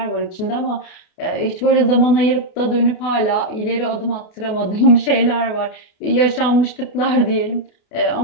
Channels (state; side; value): late; right; 28 ms